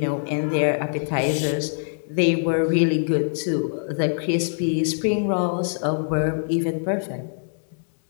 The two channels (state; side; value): silent; right; digital silence